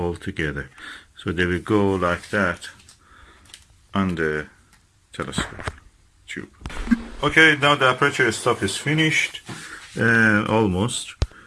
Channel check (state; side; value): identical; both; correlation 1.00